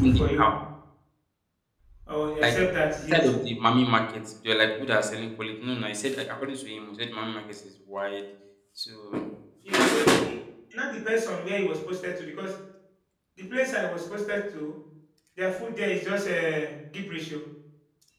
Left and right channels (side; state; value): both; identical; correlation 1.00